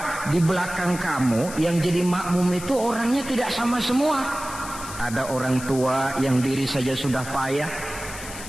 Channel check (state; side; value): noise; left; hiss, 12 dB below the sound